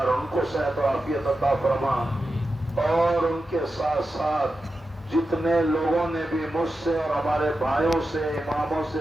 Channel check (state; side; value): normal; both; correlation 0.91